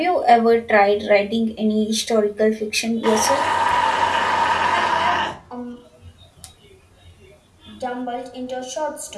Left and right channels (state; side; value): identical; both; correlation 1.00